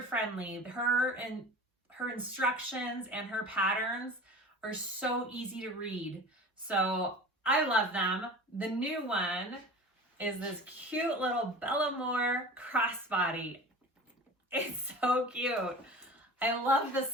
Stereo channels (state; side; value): normal; both; correlation 0.38